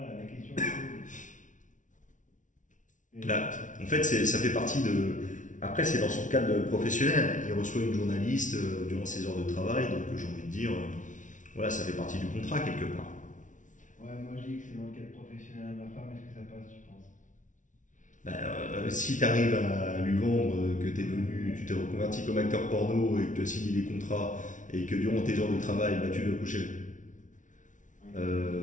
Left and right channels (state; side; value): late; right; 0.37 ms